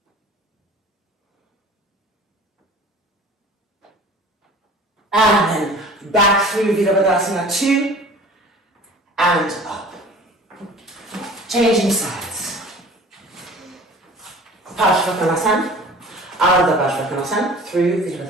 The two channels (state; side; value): normal; both; correlation 0.44